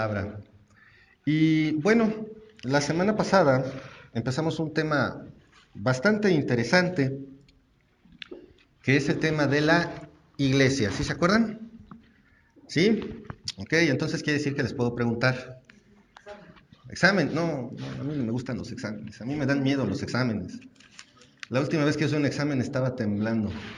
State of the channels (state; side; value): identical; both; correlation 1.00